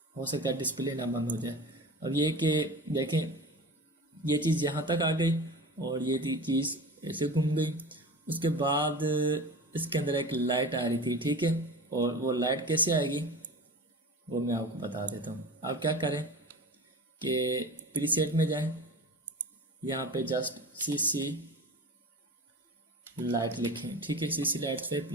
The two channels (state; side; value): normal; both; correlation 0.33